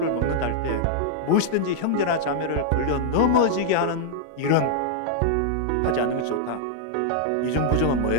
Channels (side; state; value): both; different; correlation -0.01